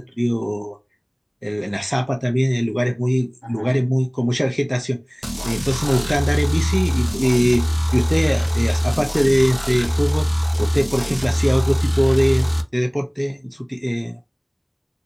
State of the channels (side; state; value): both; identical; correlation 1.00